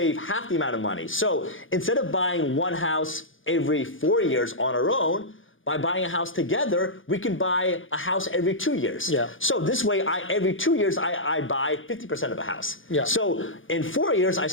half the amount of money. So instead of buying one house every 4 years on our own, by buying a house together, we can buy a house every 2 years. Yeah. So this way, every 2 years, I buy 50% of a house. Yeah. So in 4 years, I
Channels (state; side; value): late; right; 0.58 ms